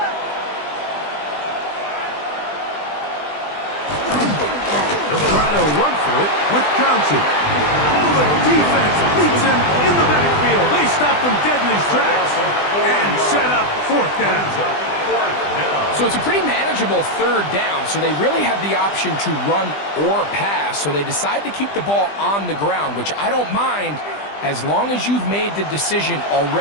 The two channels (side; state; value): right; late; 20 ms